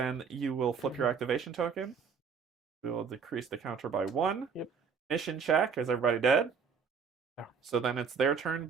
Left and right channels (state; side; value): quieter; left; 6.0 dB